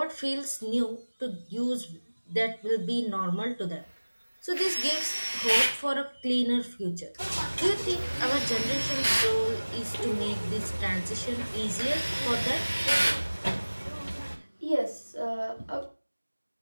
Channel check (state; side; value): inverted; both; correlation -1.00